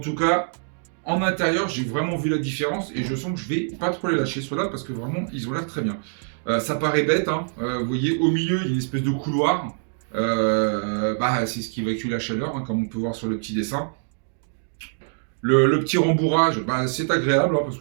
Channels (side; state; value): left; silent; 62 dB below the other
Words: cas, en intérieur, j'ai vraiment vu la différence et je sens que je vais pas trop les lâcher ceux-là parce que vraiment, ils ont l'air très bien. Ça paraît bête, hein. Vous voyez, au milieu, il y a une espèce de couloir. C'est ce qui évacue la chaleur, hein, comme on peut voir sur le petit dessin. Le petit rembourrage, c'est agréable, hein, parce